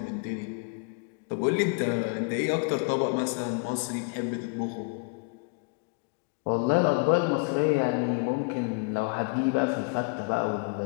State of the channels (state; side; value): quieter; right; 35.1 dB